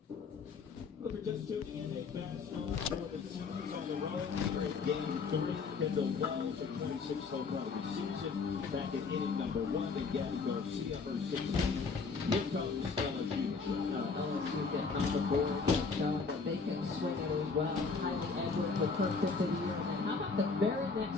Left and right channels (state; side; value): quieter; right; 4.8 dB